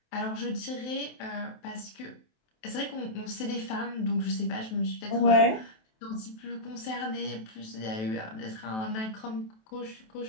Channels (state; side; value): late; right; 27 ms